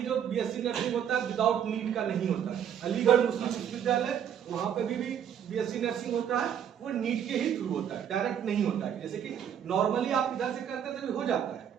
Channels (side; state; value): left; quieter; 9.0 dB